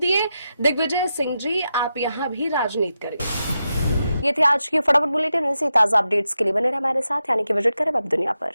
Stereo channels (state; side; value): inverted; both; correlation -0.88